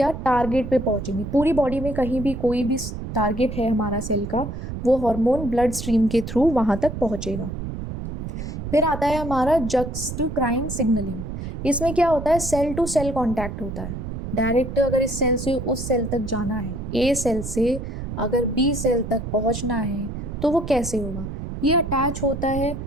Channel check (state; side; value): noise; right; rumble, 7 dB below the sound